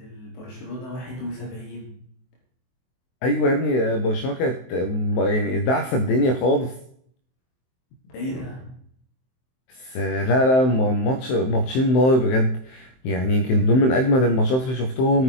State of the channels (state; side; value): late; right; 23 ms